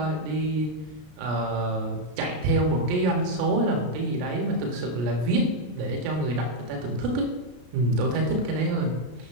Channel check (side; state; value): left; late; 33 ms